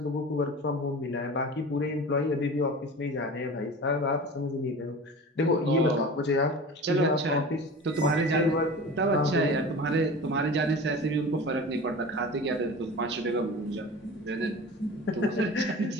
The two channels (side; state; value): both; normal; correlation 0.35